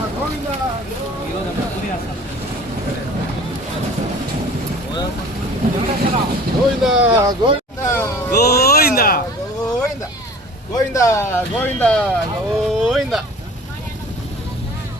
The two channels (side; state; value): both; normal; correlation 0.45